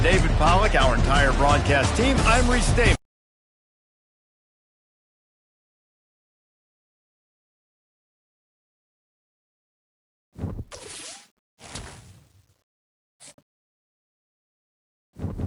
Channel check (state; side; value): identical; both; correlation 1.00